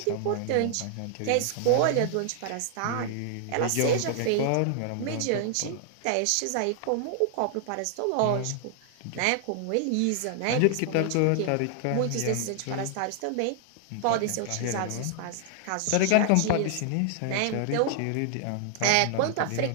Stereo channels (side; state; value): both; different; correlation 0.00